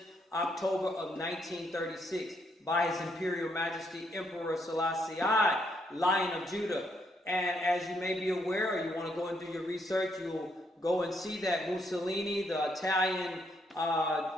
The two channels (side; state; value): both; normal; correlation 0.74